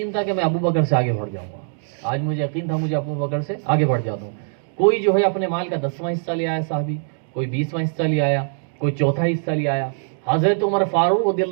تھا کہ میں ابو بکر سے آگے بڑھ جاؤں گا، آج مجھے یقین تھا مجھے ابو بکر سے آگے بڑھ جاتا ہوں۔ کوئی جو ہے اپنے مال کا 10واں حصہ لے آیا صحابی، کوئی 20واں حصہ لے آیا، کوئی چوتھا حصہ لے آیا۔ حضرت عمر فاروق رضی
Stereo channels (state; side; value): silent; left; digital silence